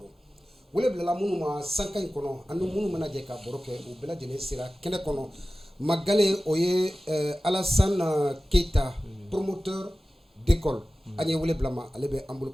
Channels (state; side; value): normal; both; correlation 0.96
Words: wele bilala minnu ma sankan in kɔnɔ ani minnu mana jɛ ka baro kɛ u bɛɛ lajɛlen sera kɛnɛ kɔnɔ Magale o ye Alassane Keita promoteur d'école an ye wele bila ma ale bɛ an